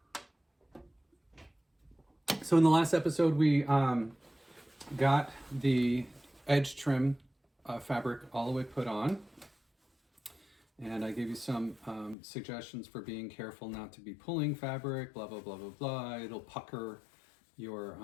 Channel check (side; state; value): right; drops out; at 12.2 s